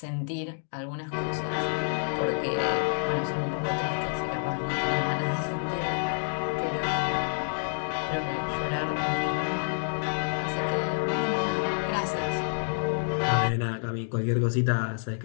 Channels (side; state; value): right; silent; digital silence